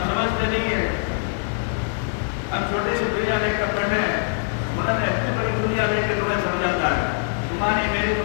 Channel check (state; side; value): silent; right; digital silence